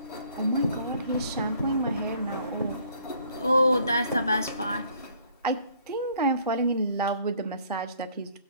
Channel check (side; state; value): both; inverted; correlation -0.60